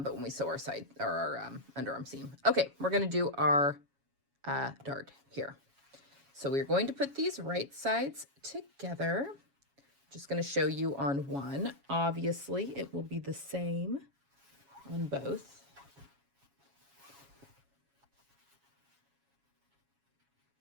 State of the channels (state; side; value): late; left; 7.2 ms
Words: when we sew our side or our underarm seam. Okay, we're going to do our dart here. So we're going to put these right sides together. Just going to show you on one. Obviously, it will be the same on both.